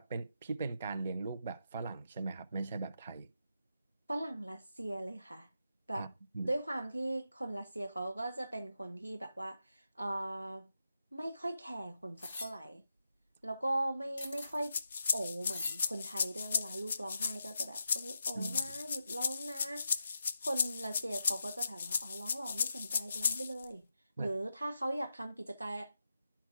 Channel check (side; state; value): both; inverted; correlation -0.87